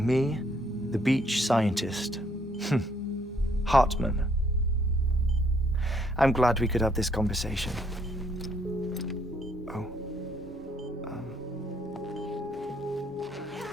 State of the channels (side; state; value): both; normal; correlation 0.69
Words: me the beach scientist. Hartman. I'm glad we could have this conversation. Oh.